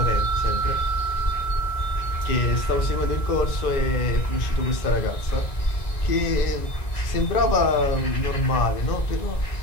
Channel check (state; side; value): late; right; 1.9 ms